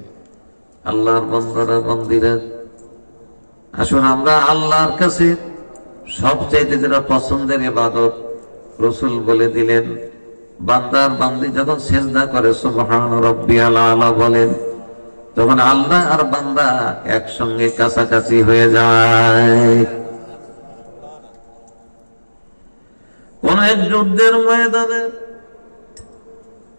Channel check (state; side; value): inverted; both; correlation -1.00